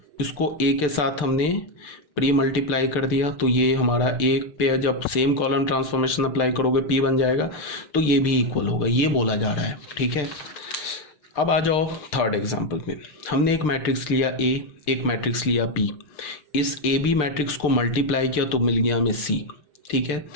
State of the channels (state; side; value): late; right; 6.7 ms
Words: इसको ए के साथ हमने प्री मल्टीप्लाई कर दिया, तो ये हमारा ए पे जब सेम कॉलम ट्रांसफॉर्मेशन अप्लाई करोगे पी बन जाएगा, तो ये भी इक्वल होगा, ये बोला जा रहा है। ठीक है, अब आ जाओ थर्ड एग्जांपल में। हमने एक मैट्रिक्स लिया ए, एक मैट्रिक्स लिया पी, इस ए बी मैट्रिक्स को मल्टीप्लाई किया तो मिल गया हमें सी। ठीक है,